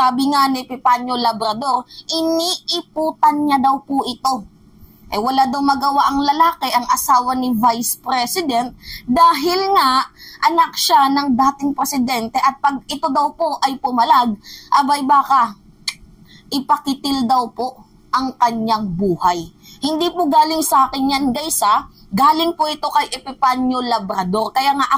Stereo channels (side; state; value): both; identical; correlation 1.00